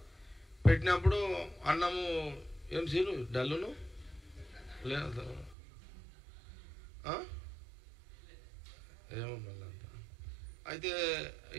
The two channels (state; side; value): drops out; left; at 5.6 s